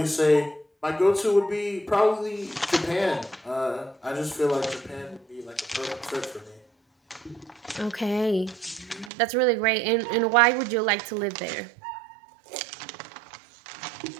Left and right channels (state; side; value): drops out; left; at 9.1 s